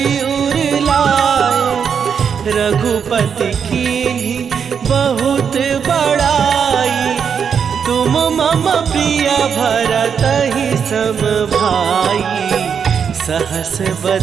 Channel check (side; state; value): left; quieter; 7.0 dB